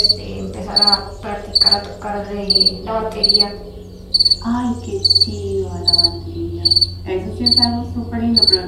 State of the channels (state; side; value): identical; both; correlation 1.00